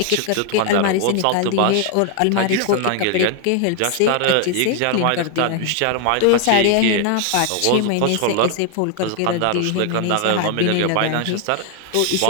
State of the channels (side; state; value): both; different; correlation 0.00